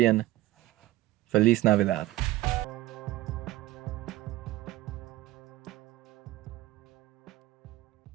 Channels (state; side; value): quieter; left; 16.7 dB